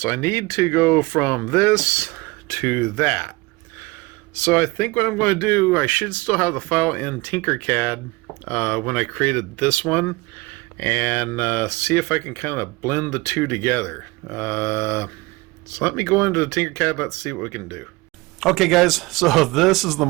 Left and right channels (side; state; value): left; quieter; 23.1 dB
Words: I need to go from this to that. So I think what I'm going to do, I should still have the file in Tinkercad when I created this one, and see if I can kind of blend the two together. So let me go into the Tinkercad, let's see what we can do. Okay guys, so this is the